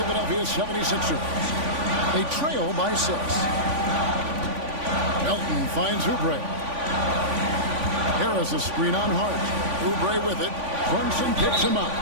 76ers. They trail by 6. Melton finds Oubre. Harris a screen on Hart. Oubre with it. Brunson picks him up.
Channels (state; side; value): late; left; 3.5 ms